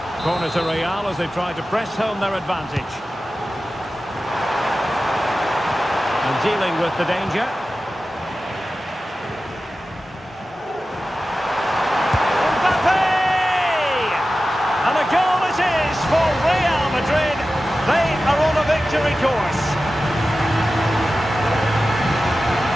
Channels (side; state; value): both; normal; correlation 0.94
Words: Corner to Real as they try to press home their advantage. And dealing with the danger. And a goal it is for Real Madrid. They are on a victory course.